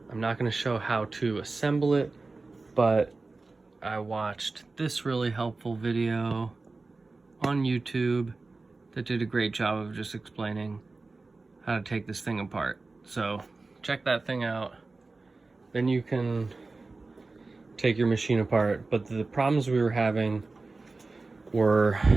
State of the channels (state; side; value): quieter; left; 3.6 dB